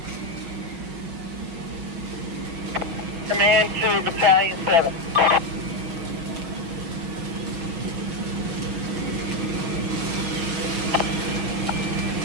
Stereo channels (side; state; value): left; late; 6.1 ms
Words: Command 2, Battalion 7.